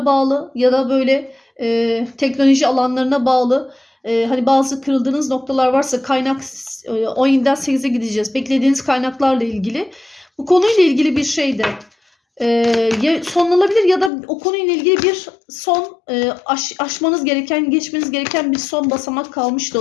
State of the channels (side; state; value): right; drops out; at 14.1 s